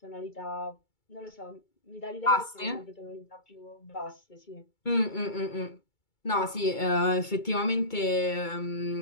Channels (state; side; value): late; right; 2.2 ms